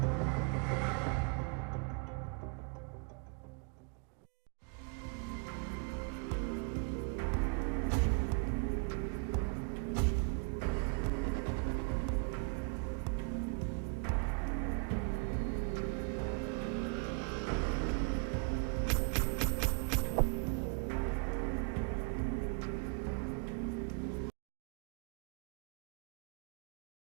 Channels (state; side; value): quieter; left; 36.2 dB